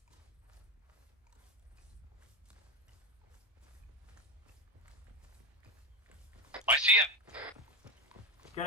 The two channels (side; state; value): both; normal; correlation 0.15